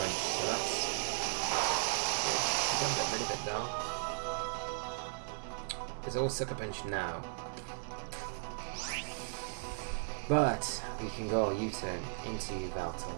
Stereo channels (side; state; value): left; silent; digital silence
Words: so that's good. We're going to get rid of it though. It's all Sucker Punch now. But we can go U-turn into Yveltal